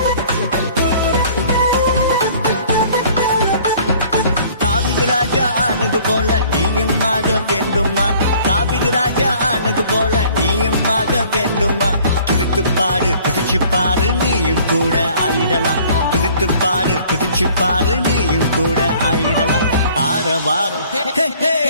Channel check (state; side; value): inverted; both; correlation -0.54